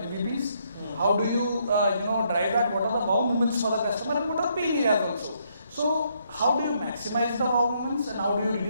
how do you drive that, what are the wow moments for the customer, and what are the pain areas also. So how do you maximize the wow moments, and how do you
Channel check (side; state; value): both; inverted; correlation -0.72